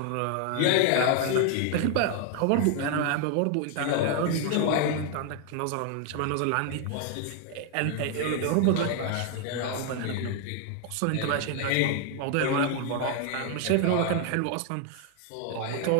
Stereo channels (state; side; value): different; both; correlation 0.00